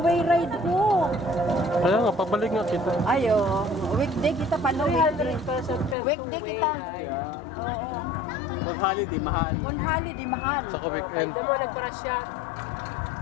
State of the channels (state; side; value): drops out; right; at 6.0 s